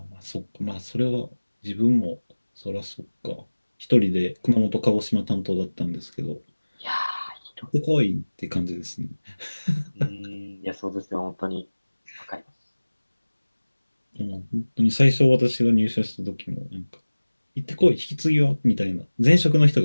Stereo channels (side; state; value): both; inverted; correlation -1.00